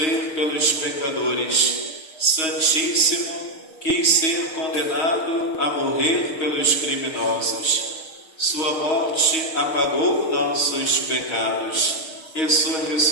pelos pecadores. Santíssimo, quis ser condenado a morrer pelos criminosos. Sua morte apagou nossos pecados. E sua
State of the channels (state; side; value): late; right; 6.5 ms